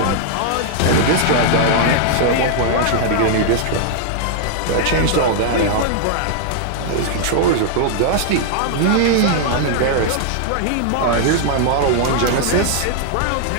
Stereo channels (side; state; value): both; different; correlation -0.01